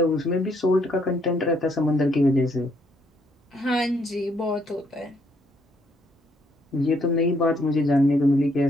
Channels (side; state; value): both; normal; correlation 0.70